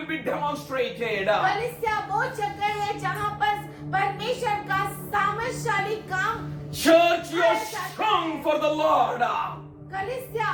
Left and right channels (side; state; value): both; identical; correlation 1.00